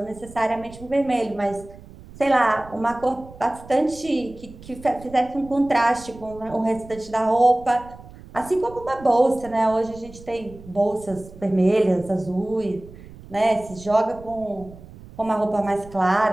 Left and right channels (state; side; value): noise; right; rumble, 19 dB below the sound